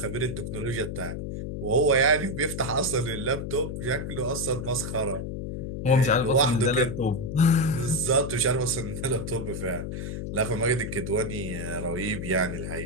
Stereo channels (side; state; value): left; noise; hum, 5 dB below the sound